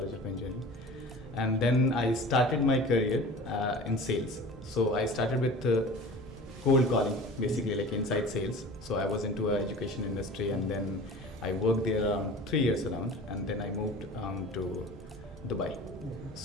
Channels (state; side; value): normal; both; correlation 0.40